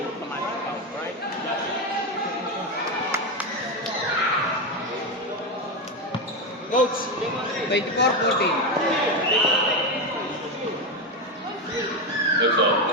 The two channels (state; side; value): normal; both; correlation 0.12